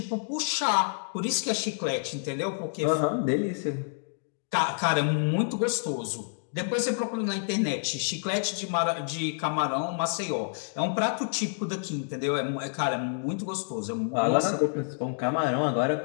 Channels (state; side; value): silent; right; digital silence